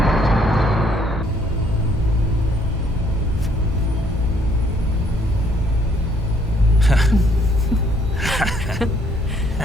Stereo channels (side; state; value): both; normal; correlation 0.65